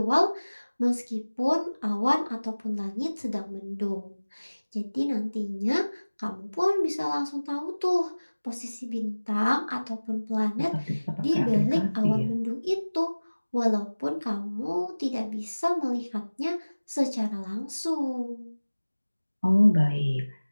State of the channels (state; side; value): inverted; both; correlation -1.00